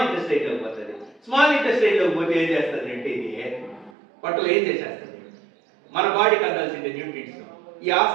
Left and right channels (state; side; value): drops out; left; at 3.9 s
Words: ఇంటెస్టైన్ లోకి పోతుంది. స్మాల్ ఇంటెస్టైన్ లోకి పోతే ఏం చేస్తుంది అంటే ఇది పొట్టలో ఏం చేసేస్తుంది, మన బాడీకి అందాల్సిన న్యూట్రియంట్స్ ఈ